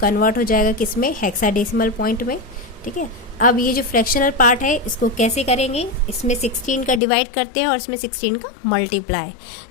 हो जाएगा किसमें? हेक्साडेसिमल पॉइंट में, ठीक है। अब ये जो फ्रैक्शनल पार्ट है इसको कैसे करेंगे? इसमें 16 का डिवाइड करते हैं और इसमें 16 का मल्टीप्लाई।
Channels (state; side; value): drops out; right; at 7.0 s